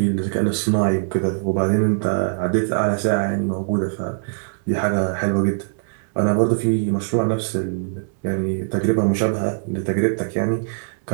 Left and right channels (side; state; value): left; silent; digital silence